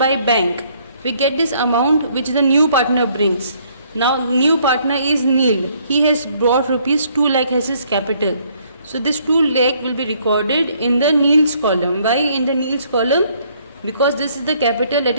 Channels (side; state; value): both; inverted; correlation -0.65